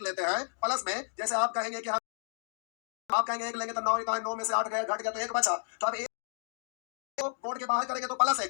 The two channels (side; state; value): right; silent; digital silence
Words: लेते हैं प्लस में, जैसे आप कहेंगे कि आप कहेंगे 1 लेंगे तो 9 का 9 में से 8 गया, घट गया तो 1 बचा, तो अब 1 को बोर्ड के बाहर करेंगे तो प्लस